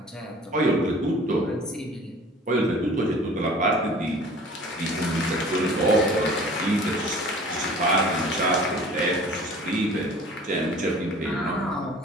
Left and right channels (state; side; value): normal; both; correlation 0.46